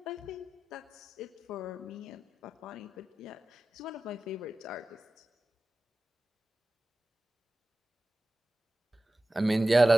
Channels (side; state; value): both; normal; correlation 0.95